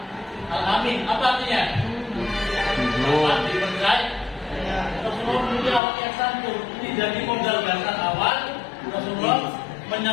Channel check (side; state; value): right; drops out; at 5.8 s